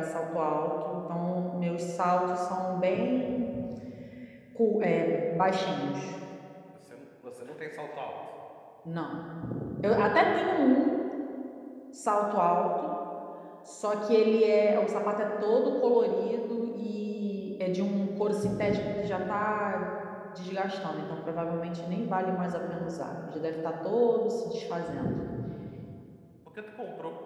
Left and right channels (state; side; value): identical; both; correlation 1.00